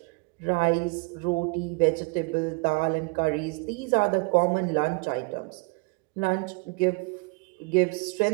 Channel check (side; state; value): left; quieter; 29.0 dB